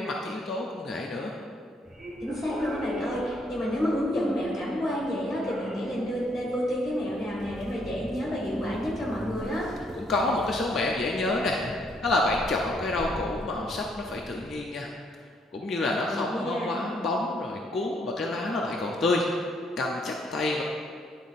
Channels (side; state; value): both; normal; correlation 0.70